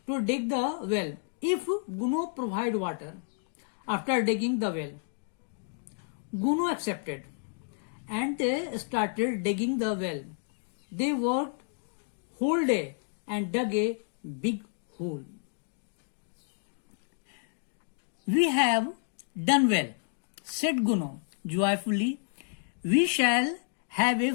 to dig the well if Guno provide water after digging the well. Guno accepted and they started digging the well. They worked whole day and dug a big hole. We have done well, said Guno joyfully. We shall have a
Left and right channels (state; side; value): silent; right; digital silence